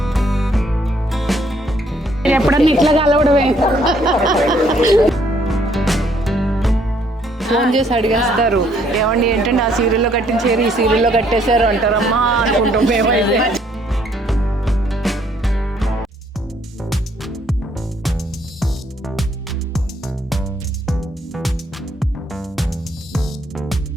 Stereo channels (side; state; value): both; normal; correlation 0.66